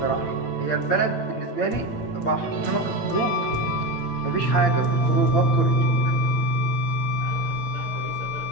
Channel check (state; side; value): late; right; 8.7 ms